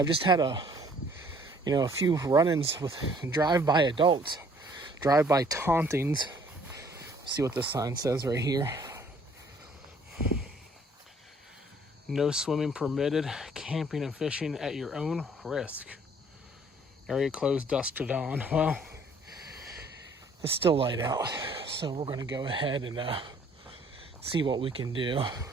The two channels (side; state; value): both; normal; correlation 0.59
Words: just had a few run-ins with drive-by adults, drive-by tauntings. See what this sign says right here. No swimming permitted, camping and fishing at your own risk. Area closed dusk to dawn. Well, it's still light out, so we're going to go ahead and see what we can do.